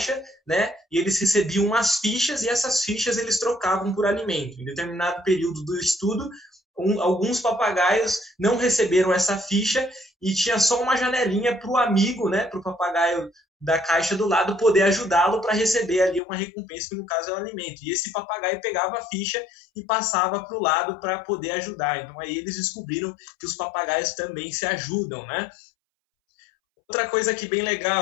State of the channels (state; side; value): drops out; right; at 16.2 s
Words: né? E eles recebiam umas fichas, e essas fichas eles trocavam por alimento. Em determinado período do estudo, alguns papagaios não receberam essa ficha e tinha só uma janelinha para o amigo, né? Para o papagaio da caixa do lado poder ajudá-lo para receber ali uma recompensa, que no caso é o alimento. E esse papagaio pegava a ficha e passava para o lado para poder ajudar. Então aí eles descobriram que os papagaios também se ajudam, né? Outra coisa aqui bem